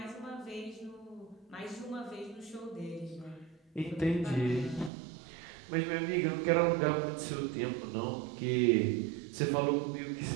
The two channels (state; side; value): drops out; left; at 4.9 s